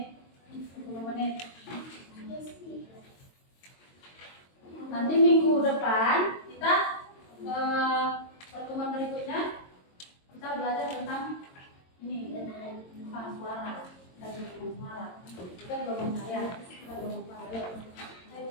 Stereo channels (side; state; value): right; late; 22 ms